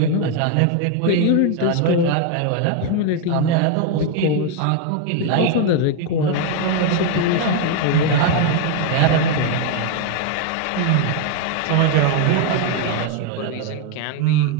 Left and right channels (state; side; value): different; both; correlation 0.01